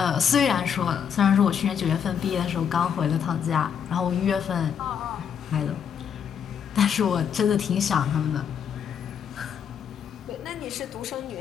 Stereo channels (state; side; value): quieter; right; 7.9 dB